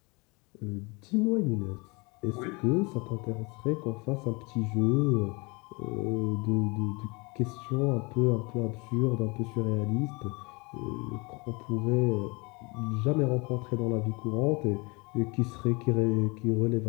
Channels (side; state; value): right; quieter; 28.3 dB